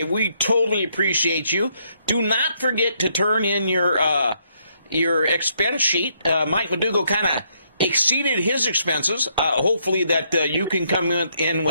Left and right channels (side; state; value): both; inverted; correlation -0.73